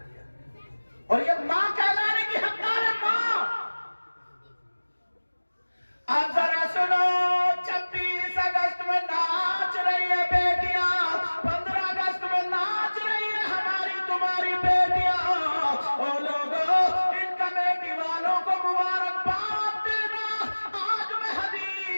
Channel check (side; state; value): both; inverted; correlation -1.00